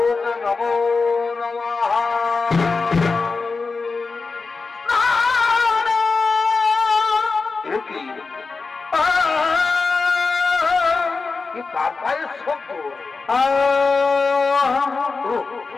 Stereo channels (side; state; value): right; quieter; 4.3 dB